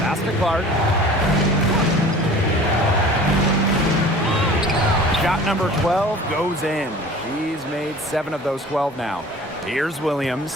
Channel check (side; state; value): both; normal; correlation 0.43